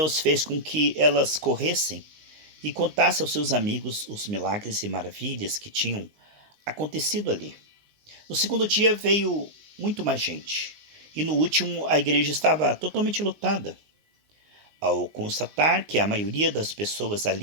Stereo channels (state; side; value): late; left; 19 ms